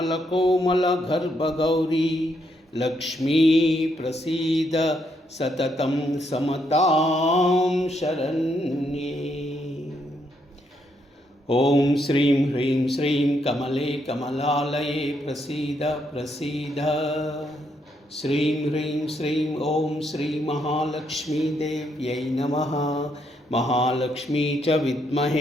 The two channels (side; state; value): both; normal; correlation 0.76